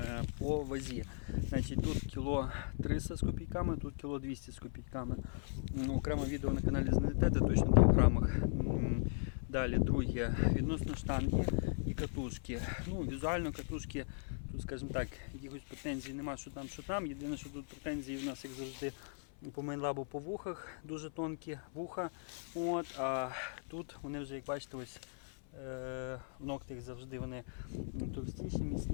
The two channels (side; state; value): right; silent; 52 dB below the other